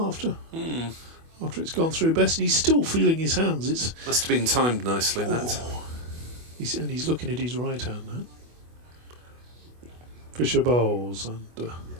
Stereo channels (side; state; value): left; late; 24 ms